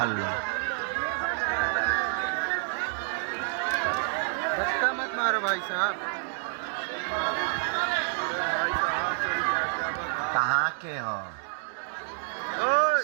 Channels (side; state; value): left; silent; digital silence